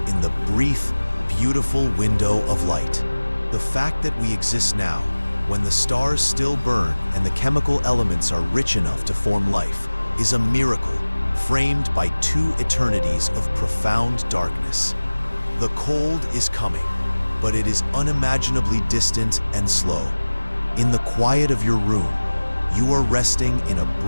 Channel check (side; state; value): both; inverted; correlation -1.00